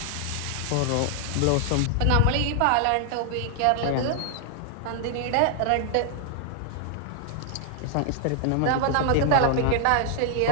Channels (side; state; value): both; different; correlation 0.00